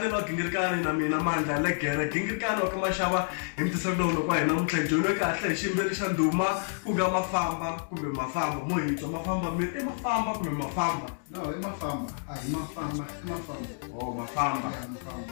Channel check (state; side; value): silent; right; digital silence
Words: ba gingirkane na mina manda legere gingirkane kama shaba imtisabdo no kwa ina mthenje no kahle shimbeli shanduma kuga mafamba kumbe mafamba moyito mafamba me mafamba kumbe mafamba no mafamba ai mafamba oh mafamba